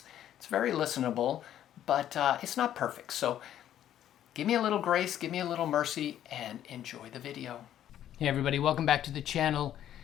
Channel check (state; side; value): quieter; right; 11.2 dB